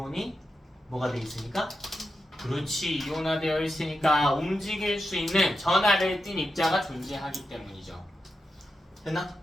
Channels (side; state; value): both; normal; correlation 0.88